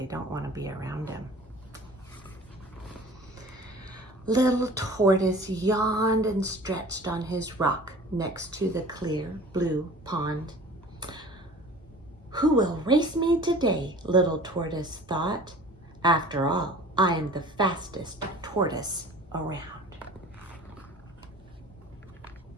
don't want to be around him. Little Tortoise yawned and stretched on his rock next to the clear blue pond. Who will race me today? Little Tortoise thought. After all, I am the fastest tortoise around.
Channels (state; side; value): normal; both; correlation 0.44